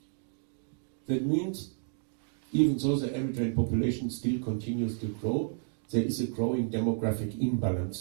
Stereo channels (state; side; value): silent; left; digital silence